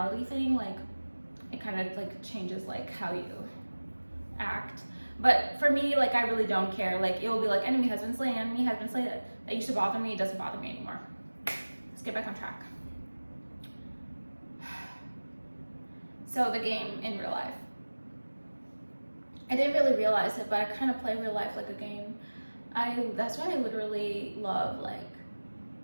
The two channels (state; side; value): inverted; both; correlation -1.00